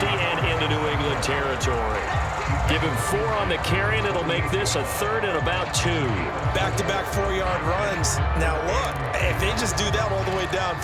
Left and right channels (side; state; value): both; identical; correlation 1.00